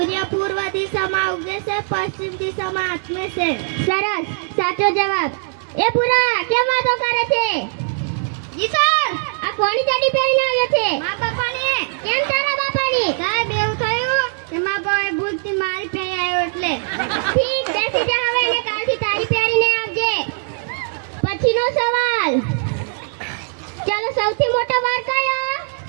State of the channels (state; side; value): silent; left; digital silence